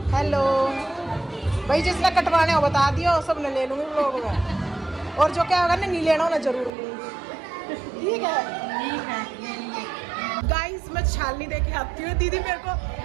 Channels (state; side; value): drops out; left; at 6.7 s